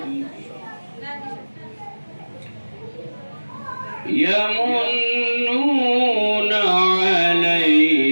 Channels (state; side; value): inverted; both; correlation -1.00